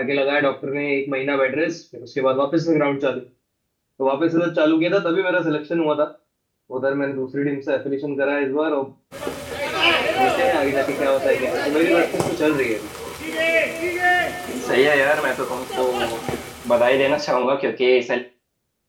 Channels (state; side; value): identical; both; correlation 1.00